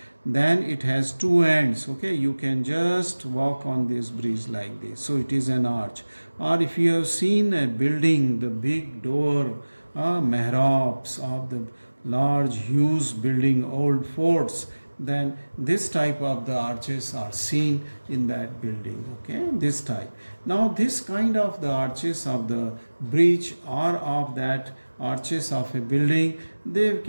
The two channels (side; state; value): both; inverted; correlation -1.00